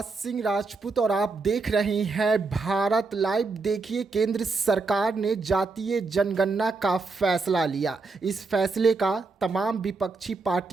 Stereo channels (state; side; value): quieter; left; 4.0 dB